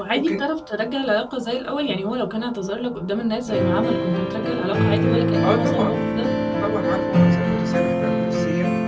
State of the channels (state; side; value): identical; both; correlation 1.00